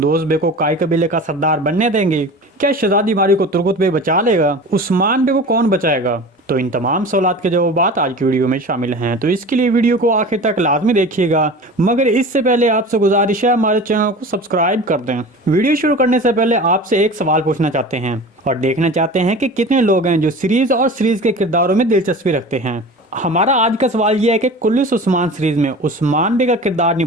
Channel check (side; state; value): both; normal; correlation 0.36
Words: बेग को काय कबीले का सरदार बनने देंगे? क्या शहजादी मारी को तुर्गुत बेग बचा लेगा? उस्मान बेग को कौन बचाएगा? तो इन तमाम सवालात के जवाब आज की वीडियो में शामिल हैं, तो इसके लिए वीडियो को आखिर तक लाजमी देखिएगा। मगर इससे पहले आपसे गुजारिश है हमारे चैनल को सब्सक्राइब कर दें। वीडियो शुरू करने से पहले आपसे एक सवाल पूछना चाहते हैं और देखना चाहते हैं कि कितने लोग हैं जो सीरीज और सीरीज के किरदारों में दिलचस्पी रखते हैं। हमारा आज का सवाल यह है कि कुल्लुस उस्मान सीरीज में उस्मान बेग का किरदार